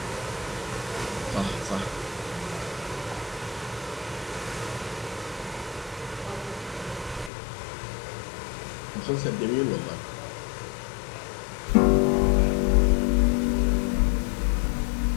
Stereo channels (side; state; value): right; drops out; at 7.3 s